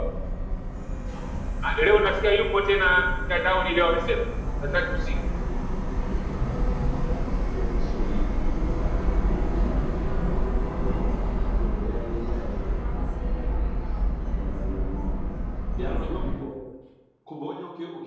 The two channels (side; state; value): both; identical; correlation 1.00